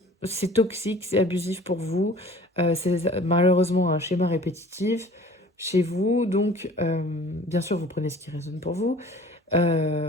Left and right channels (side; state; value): both; normal; correlation 0.47